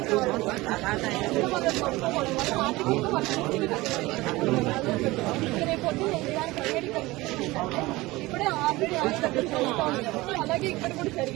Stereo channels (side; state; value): left; quieter; 20.3 dB